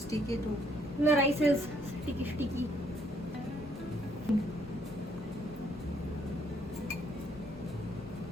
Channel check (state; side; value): normal; both; correlation 0.68